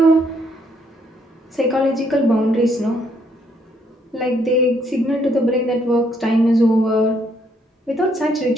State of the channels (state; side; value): normal; both; correlation 0.70